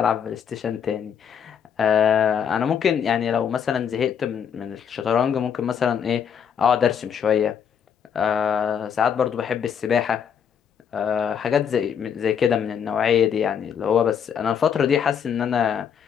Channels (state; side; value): quieter; right; 7.8 dB